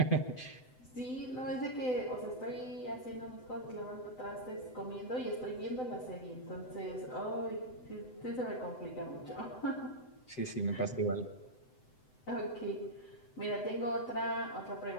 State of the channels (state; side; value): late; right; 7.9 ms